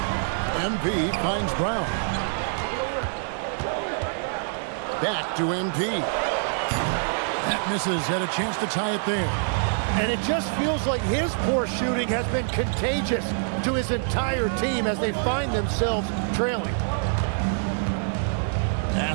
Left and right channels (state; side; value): silent; left; digital silence